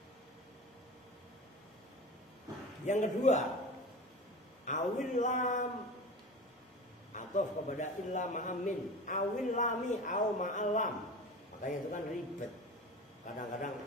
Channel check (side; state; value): both; normal; correlation 0.33